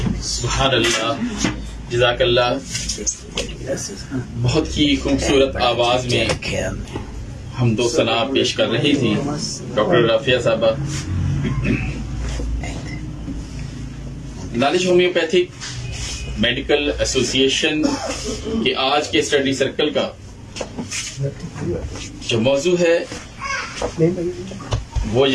सुभान अल्लाह, जज़ाकल्लाह। बहुत ही खूबसूरत आवाज में हम दो सना पेश कर रही थी डॉक्टर राफिया साहबा। नॉलेज होम्योपैथिक मेडिकल एसोसिएशन के आज के स्टडी सर्कल का जो मौजू है वो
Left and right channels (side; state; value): both; identical; correlation 1.00